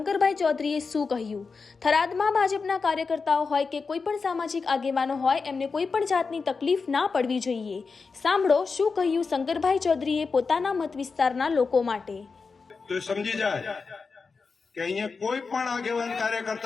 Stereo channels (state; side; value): quieter; right; 4.7 dB